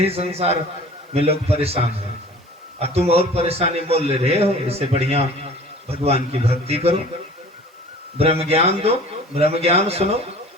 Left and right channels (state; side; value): normal; both; correlation 0.45